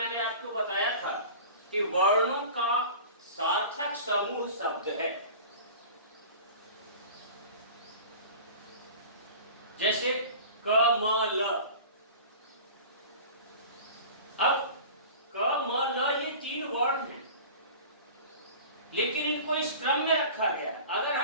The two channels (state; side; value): inverted; both; correlation -0.38